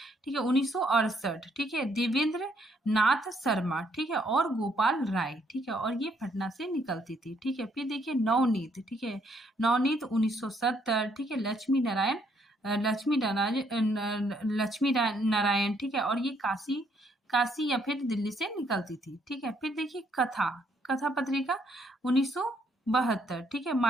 ठीक है, 1968, ठीक है, देवेंद्र नाथ शर्मा, ठीक है, और गोपाल राय, ठीक है, और ये पटना से निकलती थी, ठीक है। फिर देखिए नवनीत, ठीक है, नवनीत 1970, ठीक है, लक्ष्मी नारायण, ठीक है, और ये काशी या फिर दिल्ली से निकलती थी, ठीक है। फिर देखिए कथा पत्रिका 1972, ठीक है,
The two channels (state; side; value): normal; both; correlation 0.70